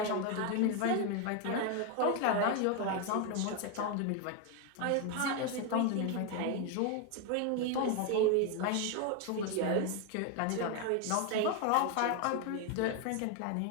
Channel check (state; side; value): different; both; correlation 0.01